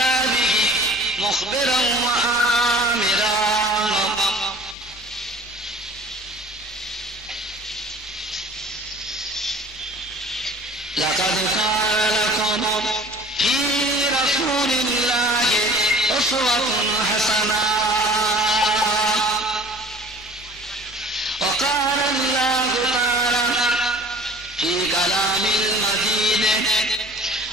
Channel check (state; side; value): normal; both; correlation 0.46